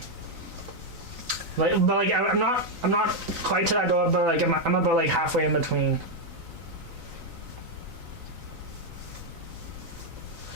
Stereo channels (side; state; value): left; late; 3.9 ms